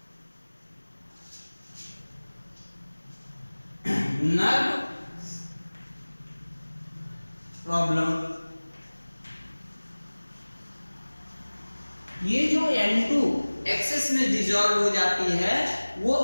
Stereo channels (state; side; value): inverted; both; correlation -1.00